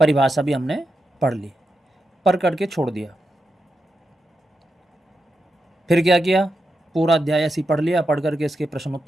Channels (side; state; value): both; normal; correlation 0.87